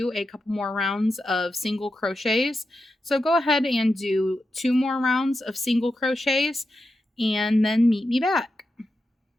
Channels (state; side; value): normal; both; correlation 0.89